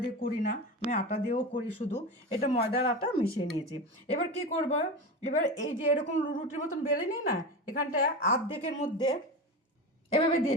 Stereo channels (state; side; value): normal; both; correlation 0.24